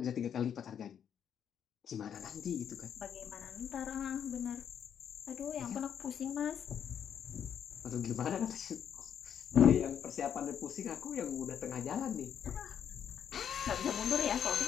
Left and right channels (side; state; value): right; quieter; 8.6 dB